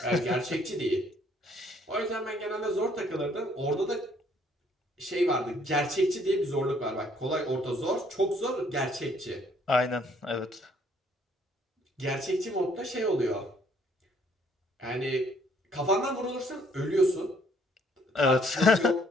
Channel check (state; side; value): normal; both; correlation 0.64